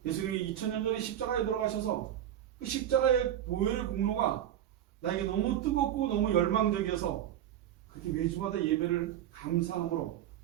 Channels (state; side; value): quieter; left; 11.2 dB